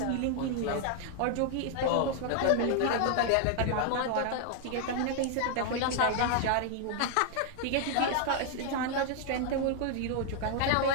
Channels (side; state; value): both; different; correlation 0.00